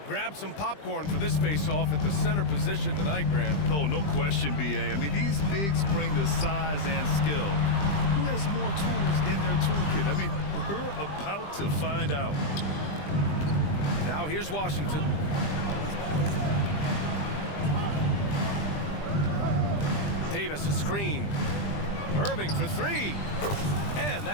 Grab some popcorn for this face-off at the center position tonight, Grant. Oh, no question, B.A. I mean, these bigs bring the size and skill. Who has more tools in their toolkit? I mean, we're about to find out. Now here's Washington. Davis a screen. Irving for three. And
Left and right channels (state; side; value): late; right; 20 ms